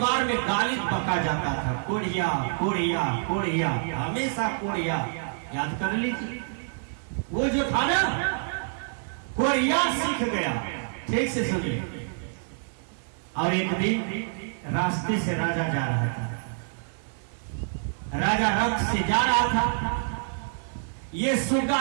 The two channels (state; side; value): silent; left; 60 dB below the other